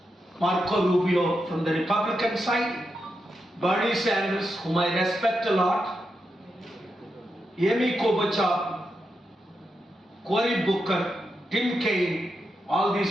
Marco Rubio from the Republican side, Bernie Sanders, whom I respect a lot, Amy Klobuchar, Cory Booker, Tim Kaine, all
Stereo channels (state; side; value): normal; both; correlation 0.86